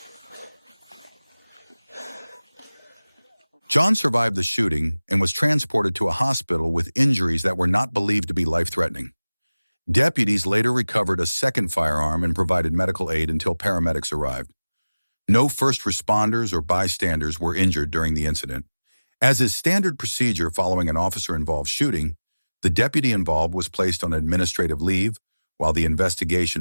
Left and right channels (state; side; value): inverted; both; correlation -0.99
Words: John survived the shooting and was transported to a hospital with injuries that were not believed to be life-threatening. Deputies later recovered a second firearm and provided medical aid until paramedics arrived. No first responders or bystanders were injured during the incident. As is standard procedure following an officer-involved shooting, the deputy involved was placed on administrative leave while the